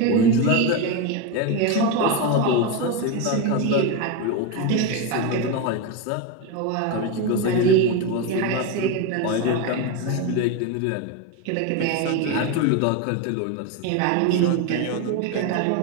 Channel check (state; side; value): different; both; correlation 0.04